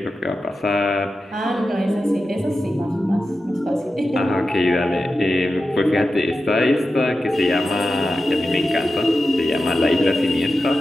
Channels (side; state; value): both; normal; correlation 0.92